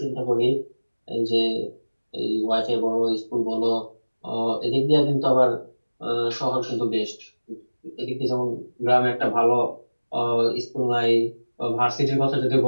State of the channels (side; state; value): both; inverted; correlation -1.00